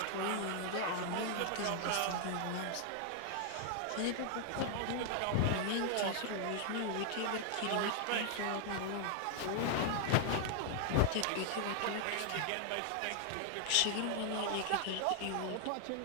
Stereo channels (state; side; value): different; both; correlation 0.00